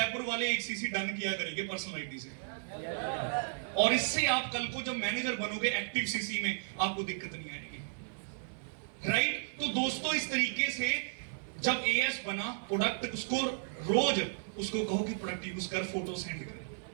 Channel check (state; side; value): silent; left; 55 dB below the other